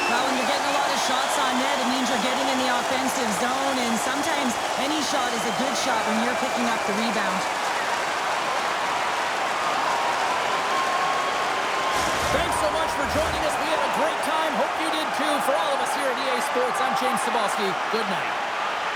Well, when you're getting a lot of shots on net, it means you're getting in the offensive zone, and sometimes any shot is a good shot when you're picking up the rebound. Thanks so much for joining us. We had a great time. Hope you did too. For all of us here at EA Sports, I'm James Cebulski. Good night.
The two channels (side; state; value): both; identical; correlation 1.00